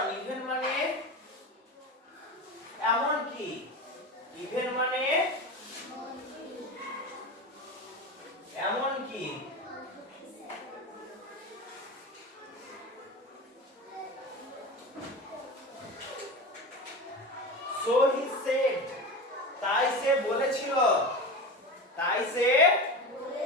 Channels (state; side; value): normal; both; correlation 0.26